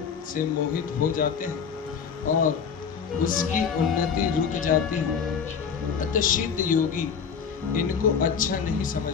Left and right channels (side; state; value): right; quieter; 6.6 dB